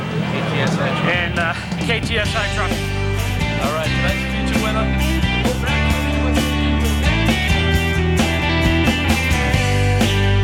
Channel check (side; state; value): both; identical; correlation 1.00